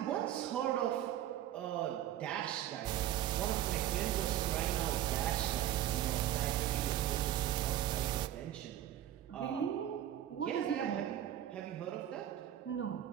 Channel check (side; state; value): left; quieter; 12.1 dB